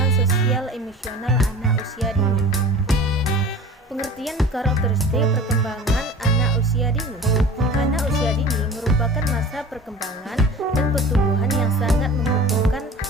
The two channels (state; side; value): normal; both; correlation 0.40